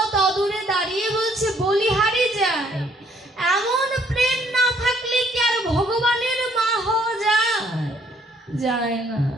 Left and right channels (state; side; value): normal; both; correlation 0.64